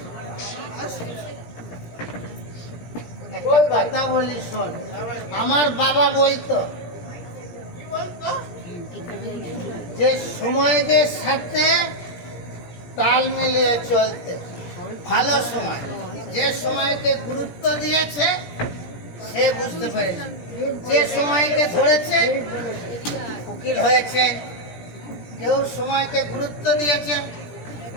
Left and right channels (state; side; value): late; right; 17 ms